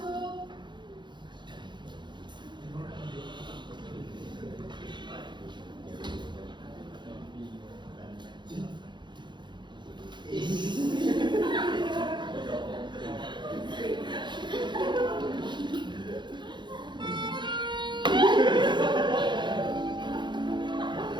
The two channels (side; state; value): left; late; 0.22 ms